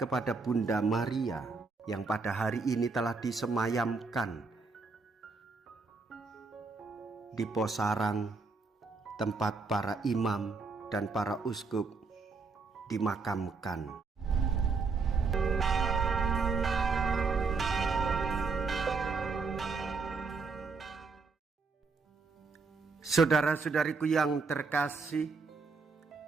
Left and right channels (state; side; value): quieter; left; 4.5 dB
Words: Bunda Maria yang pada hari ini telah disemayamkan di Posarang, tempat para imam dan para uskup dimakamkan. Saudara-saudariku yang terkasih,